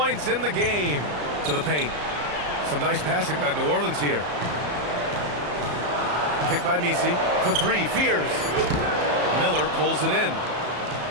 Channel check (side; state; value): left; late; 34 ms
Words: in the game. To the paint. Some nice passing by New Orleans here. Pick by Misi. For three. Fears. Miller pulls it in.